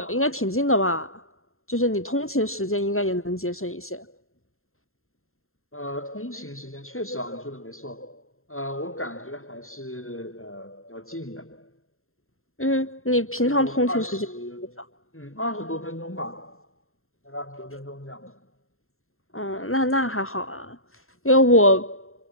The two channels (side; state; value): right; late; 0.61 ms